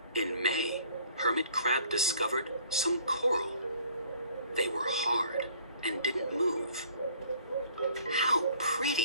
In May, Hermit Crab discovered some coral. They were hard and didn't move. How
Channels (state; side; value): inverted; both; correlation -0.56